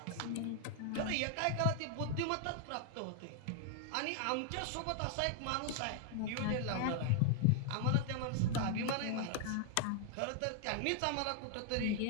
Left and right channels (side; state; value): both; different; correlation 0.00